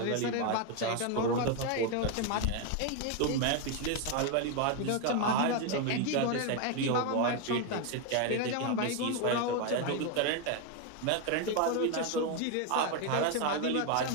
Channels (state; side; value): different; both; correlation 0.01